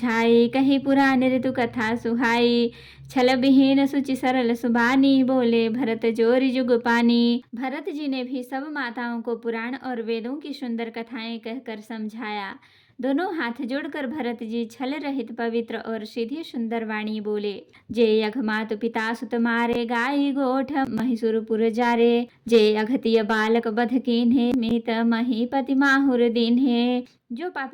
कही पुराण ऋतु कथा सुहाई। छल विहीन सुचि सरल सुबानी, बोले भरत जोरी जुग पानी। भरत जी ने भी सब माताओं को पुराण और वेदों की सुंदर कथाएं कहकर समझाया। दोनों हाथ जोड़कर भरत जी छल रहित पवित्र और सीधी सुंदर वाणी बोले। जे यघ मातु पिता सुत मारे, गाई गोठ महिषुरपुर जारे। जे अघतिय बालक बध कीन्हे, मीत महीपति माहुर दीन्हे। जो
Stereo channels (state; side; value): identical; both; correlation 1.00